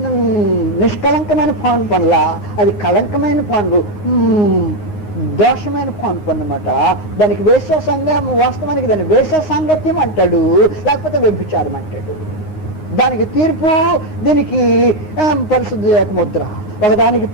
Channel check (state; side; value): late; right; 9.6 ms